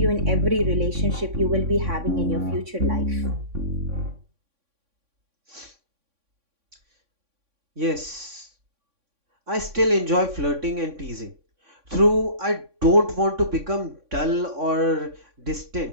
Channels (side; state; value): left; late; 3.6 ms